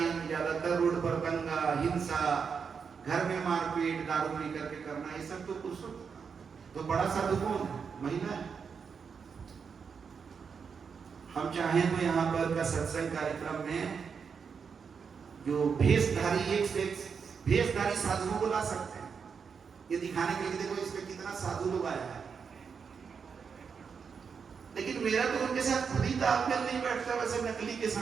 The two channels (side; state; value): left; quieter; 6.1 dB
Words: ज्यादातर रोड पर दंगा, हिंसा, घर में मारपीट, दारू पी करके करना, ये सब तो पुरुषों। तो बड़ा साधु कौन है? महिला है। हम चाहें तो यहाँ पर का सत्संग कार्यक्रम में जो भेषधारी, एक से एक भेषधारी साधुओं को ला सकते हैं, ये दिखाने के लिए देखो इसमें कितना साधु लोग आया है। लेकिन मेरा तो उनके साथ खुद ही तालमेल नहीं बैठता, वैसे नकली के